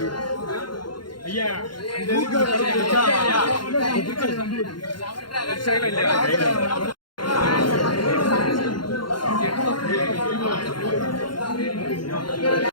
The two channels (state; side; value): late; right; 0.72 ms